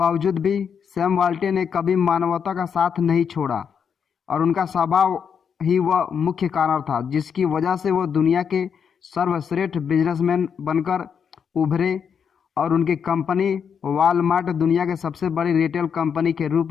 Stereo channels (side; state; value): right; quieter; 7.1 dB